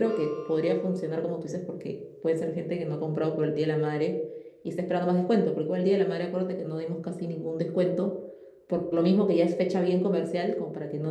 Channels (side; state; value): both; identical; correlation 1.00